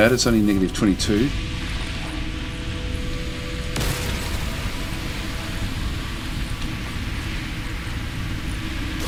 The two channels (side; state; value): both; identical; correlation 1.00